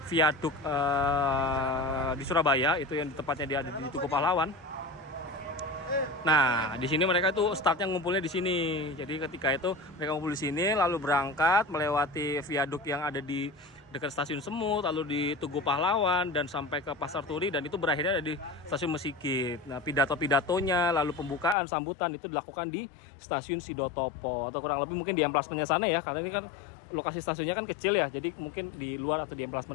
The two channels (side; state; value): right; drops out; at 21.6 s